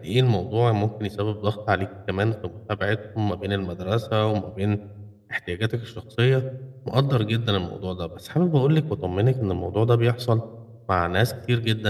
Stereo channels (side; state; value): both; identical; correlation 1.00